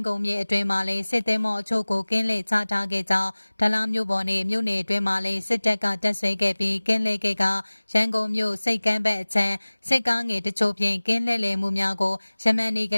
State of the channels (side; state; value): both; inverted; correlation -1.00